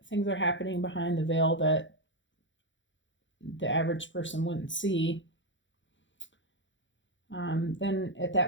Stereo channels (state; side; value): late; right; 0.54 ms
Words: things are happening behind the veil that the average person wouldn't see, then at